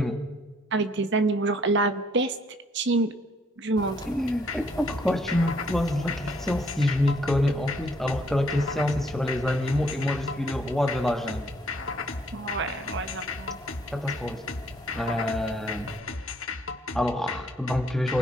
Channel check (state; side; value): normal; both; correlation 0.66